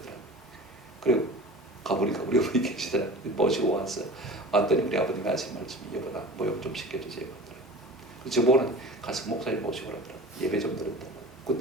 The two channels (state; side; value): normal; both; correlation 0.38